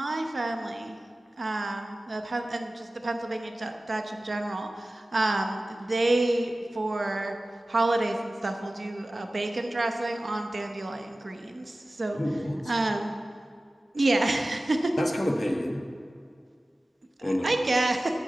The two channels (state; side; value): normal; both; correlation 0.97